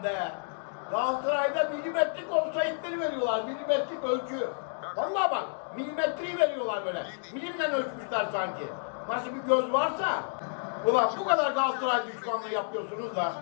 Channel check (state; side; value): silent; right; digital silence